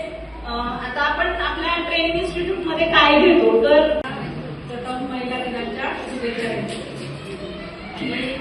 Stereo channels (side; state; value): both; identical; correlation 1.00